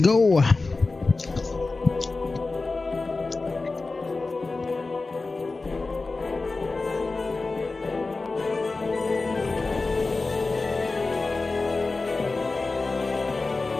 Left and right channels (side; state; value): right; quieter; 3.6 dB